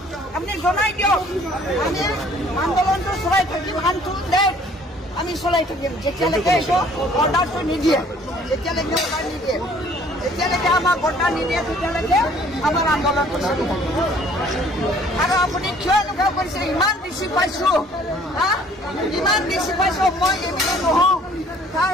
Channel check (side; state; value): both; normal; correlation 0.56